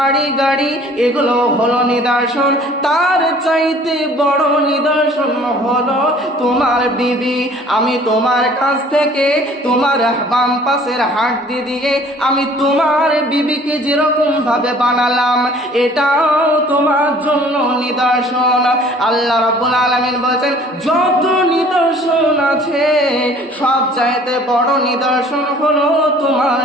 গাড়ি, এগুলো হলো নিদর্শন। তার চাইতে বড় নিদর্শন হলো তোমার বিবি। আমি তোমার কাছ থেকে তোমার বাম পাশের হাড্ডি দিয়ে আমি তোমার বিবিকে যেরকম ভাবে বানালাম, এটাও তোমার জন্য নিদর্শন। আল্লাহ রাব্বুল আলামিন বলেন যত নিদর্শন আছে সব চাইতে বড় নিদর্শন হলো তোমার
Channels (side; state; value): both; normal; correlation 0.52